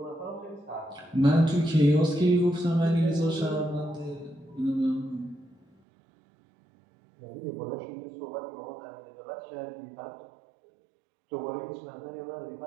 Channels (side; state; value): left; drops out; at 5.7 s